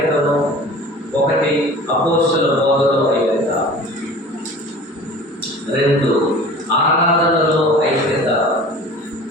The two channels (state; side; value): normal; both; correlation 0.42